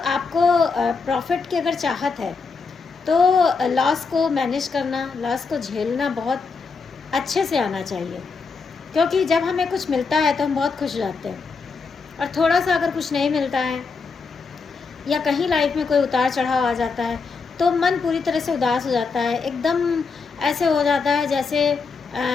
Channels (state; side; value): quieter; right; 4.8 dB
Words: प्रॉफिट की अगर चाहत है तो लॉस को मैनेज करना, लॉस को झेलना बहुत अच्छे से आना चाहिए। क्योंकि जब हमें कुछ मिलता है तो हम बहुत खुश हो जाते हैं, और थोड़ा सा अगर कुछ नहीं मिलता है या कहीं लाइफ में कोई उतार चढ़ाव आ जाता है तो मन पूरी तरह से उदास हो जाता है। एकदम ऐसे हो जाता है जैसे